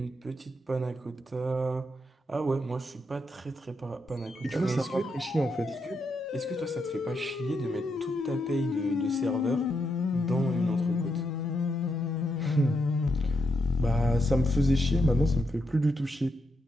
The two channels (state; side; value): normal; both; correlation 0.81